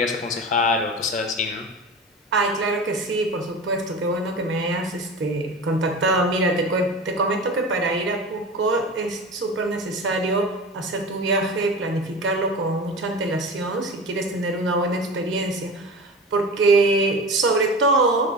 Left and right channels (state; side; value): normal; both; correlation 0.31